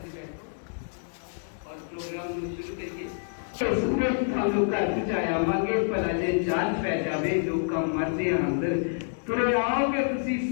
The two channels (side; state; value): right; silent; digital silence